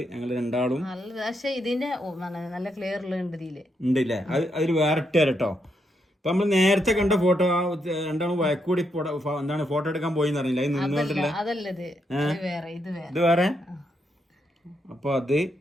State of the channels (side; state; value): both; normal; correlation 0.80